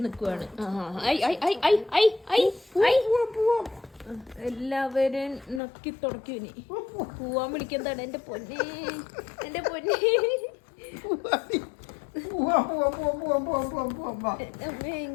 നിക്കുവാണ്. എല്ലാവരും നക്കി തുടക്കി. ഇനി പോവാൻ വിളിക്കുന്നതാണ്. എന്റെ പൊന്നെ, എന്റെ പൊന്നെ,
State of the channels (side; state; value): right; drops out; at 5.6 s